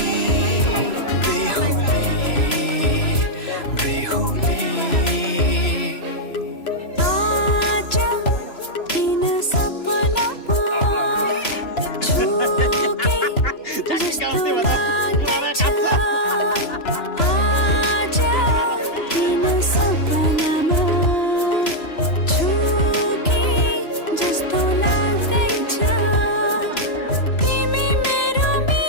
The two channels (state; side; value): late; right; 3.0 ms